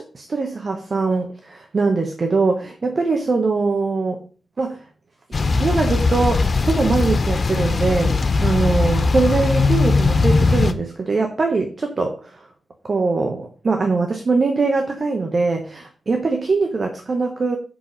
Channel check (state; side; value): normal; both; correlation 0.88